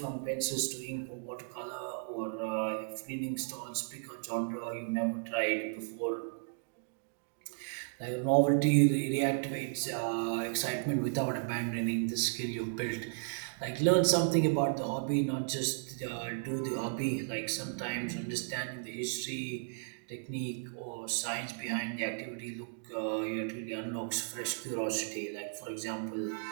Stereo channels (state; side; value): silent; left; digital silence